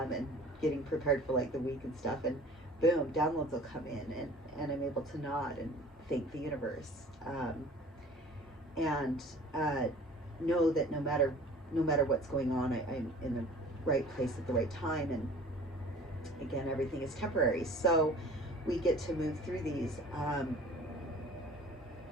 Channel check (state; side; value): normal; both; correlation 0.46